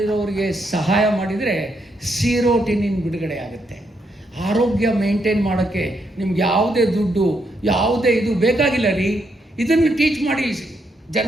ಸಹಾಯ ಮಾಡಿದರೆ ಸೀರೋಟಿನಿನ್ ಬಿಡುಗಡೆ ಆಗುತ್ತೆ. ಆರೋಗ್ಯ ಮೇಂಟೈನ್ ಮಾಡೋಕ್ಕೆ ನಿಮ್ಗೆ ಯಾವುದೇ ದುಡ್ಡು, ಯಾವುದೇ ಇದು ಬೇಕಾಗಿಲ್ಲ ರೀ. ಇದನ್ನು ಟೀಚ್ ಮಾಡಿ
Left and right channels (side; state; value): both; normal; correlation 0.78